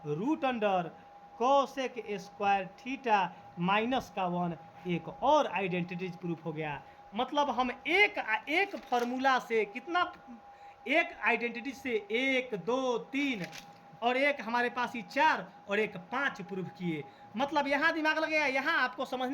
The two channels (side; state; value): both; identical; correlation 1.00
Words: root under cosec square theta minus का 1। एक और आइडेंटिटी प्रूफ हो गया। मतलब हम एक फार्मूला से कितना, एक आइडेंटिटी से 1 2 3 और एक हमारे पास ही 4 और एक 5 प्रूफ किए। मतलब यहाँ दिमाग लगेगा, यहाँ आपको